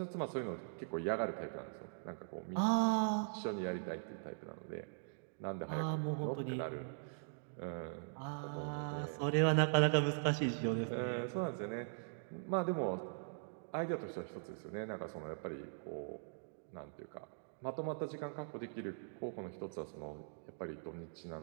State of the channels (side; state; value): left; silent; digital silence